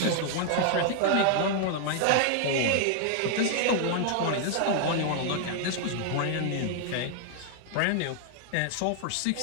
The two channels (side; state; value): both; different; correlation 0.00